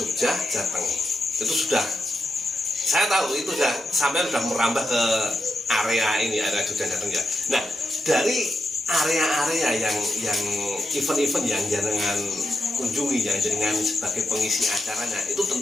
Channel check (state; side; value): normal; both; correlation 0.86